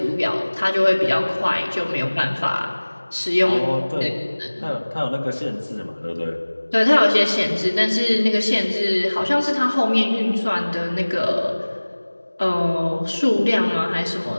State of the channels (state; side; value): inverted; both; correlation -1.00